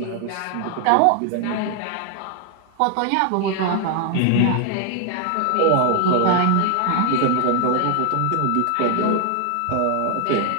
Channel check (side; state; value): both; different; correlation 0.00